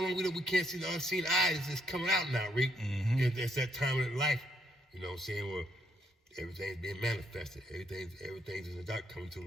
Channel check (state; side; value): normal; both; correlation 0.73